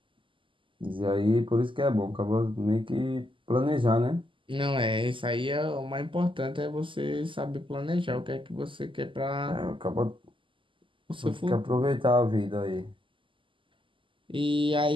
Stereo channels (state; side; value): late; left; 0.25 ms